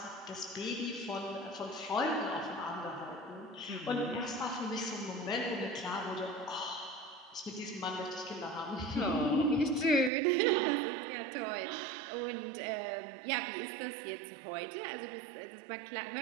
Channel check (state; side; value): drops out; left; at 10.1 s